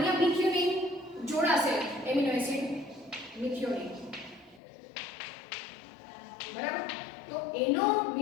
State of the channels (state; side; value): drops out; right; at 4.6 s